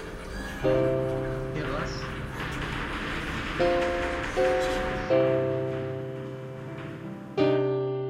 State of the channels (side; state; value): both; identical; correlation 1.00